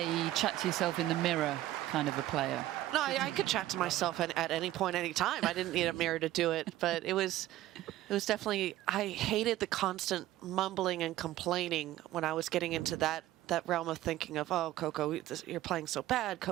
chat to yourself in the mirror kind of a player? No, I could chat to myself at any point, any time. I didn't need a mirror to do it, but it was definitely, I hated the constant mumbling and complaining when I was getting into that realm of thinking of, oh, Coco, you're playing so bad.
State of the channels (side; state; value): left; quieter; 14.9 dB